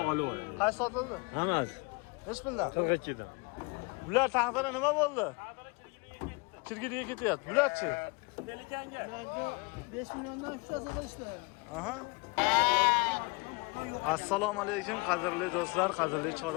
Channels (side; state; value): right; quieter; 29.0 dB